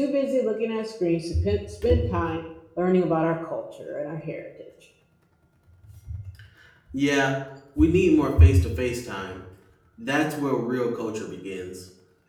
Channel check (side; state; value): both; identical; correlation 1.00